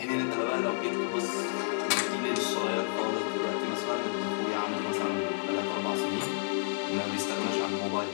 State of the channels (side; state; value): right; silent; 58 dB below the other